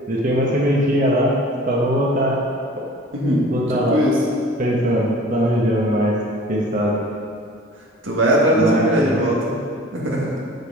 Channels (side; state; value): both; normal; correlation 0.45